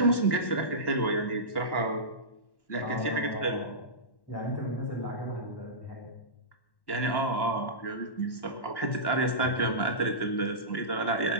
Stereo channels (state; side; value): late; right; 1.1 ms